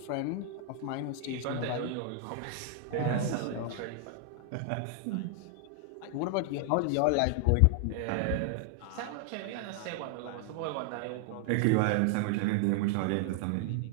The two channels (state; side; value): different; both; correlation 0.00